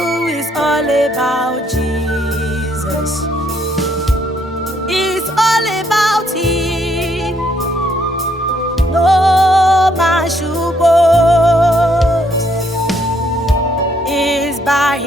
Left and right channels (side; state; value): both; normal; correlation 0.70